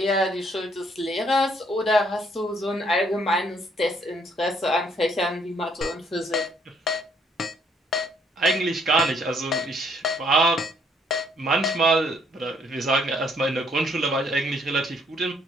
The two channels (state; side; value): normal; both; correlation 0.67